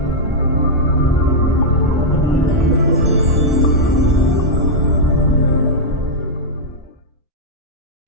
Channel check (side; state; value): both; normal; correlation -0.05